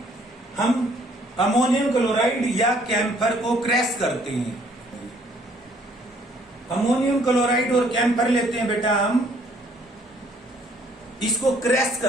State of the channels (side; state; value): both; normal; correlation 0.63